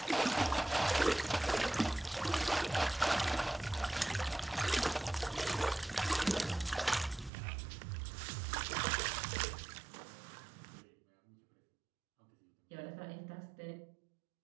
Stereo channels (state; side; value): drops out; left; at 7.3 s